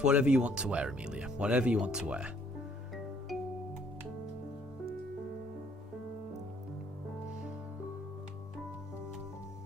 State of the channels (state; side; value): normal; both; correlation 0.64